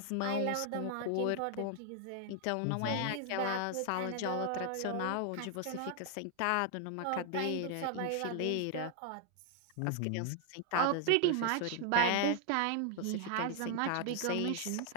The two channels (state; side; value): different; both; correlation 0.00